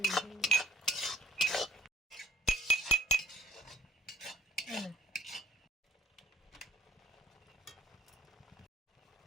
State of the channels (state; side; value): normal; both; correlation 0.57